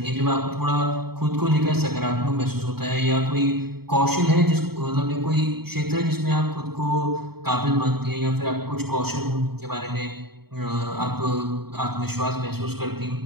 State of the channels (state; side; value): late; left; 0.96 ms